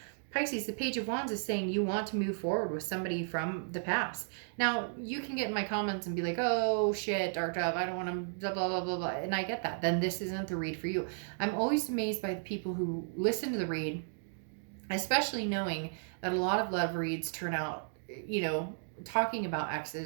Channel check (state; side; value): silent; left; digital silence